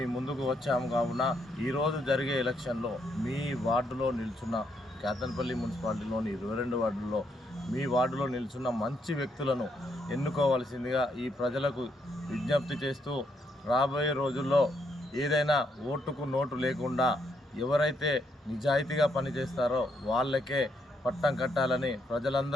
ముందుకు వచ్చాము. కావున ఈరోజు జరిగే ఎలక్షన్లో మీ వార్డులో నిల్చున్న కేతన్పల్లి మున్సిపాలిటీలోని 22 వార్డుల్లో మీ వార్డులో నిల్చున్న మంచి వ్యక్తులను ఎన్నుకోవాల్సిందిగా ఈ ప్రజలకు విజ్ఞప్తి చేస్తూ, రాబోయే రోజుల్లో ఏదైనా ఓటుకు నోటు లేకుండా ఎవరైతే నిజాయితీగా పనిచేస్తారో వాళ్ళకే పట్టం కట్టాలని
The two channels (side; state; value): both; normal; correlation 0.76